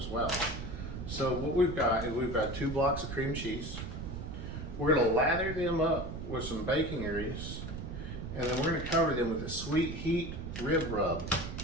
well. So what we've got is we've got 2 blocks of cream cheese. We're going to lather them up with some bacon grease, and then we're going to cover them with a sweet heat rib rub.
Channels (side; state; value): right; noise; rumble, 7 dB below the sound